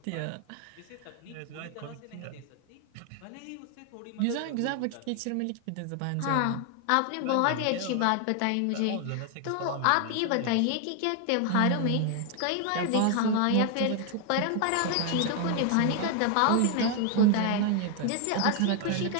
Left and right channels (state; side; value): different; both; correlation 0.00